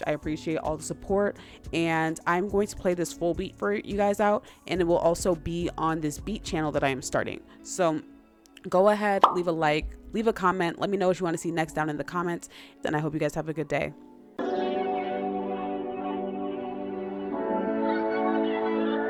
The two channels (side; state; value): both; identical; correlation 1.00